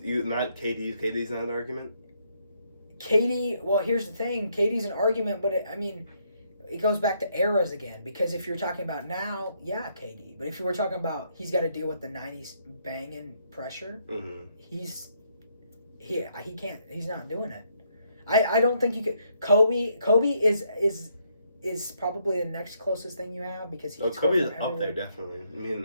not KD. KD's not an argument? KD, well, here's the thing. KD's an argument, but it goes back to eras again. Because if you're talking about now, yeah, KD. But if you were talking about he's got to deal with the 90s banging pressure, he can't. He's not doing it. I don't think you could. Kobe is probably the next closest thing you have because Kobe is up there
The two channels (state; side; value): inverted; both; correlation -0.73